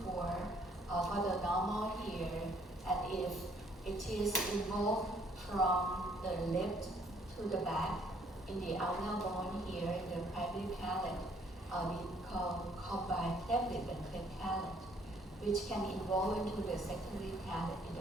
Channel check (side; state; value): both; normal; correlation 0.64